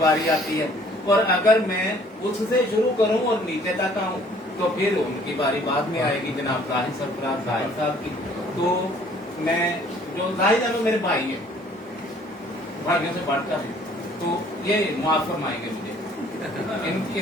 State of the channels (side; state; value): both; normal; correlation 0.57